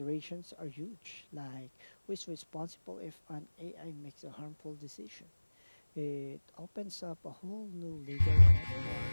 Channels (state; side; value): inverted; both; correlation -1.00